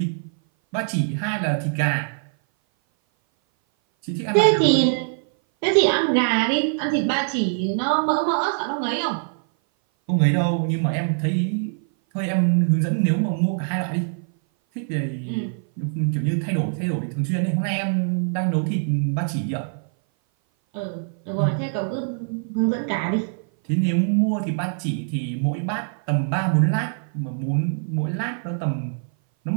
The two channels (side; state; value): left; silent; 58 dB below the other